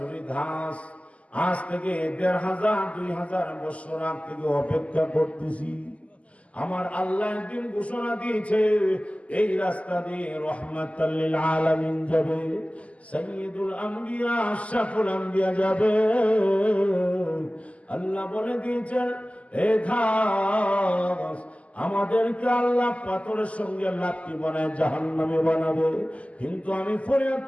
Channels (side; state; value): right; late; 0.066 ms